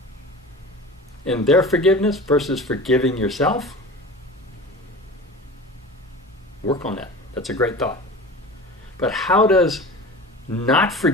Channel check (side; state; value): both; normal; correlation 0.35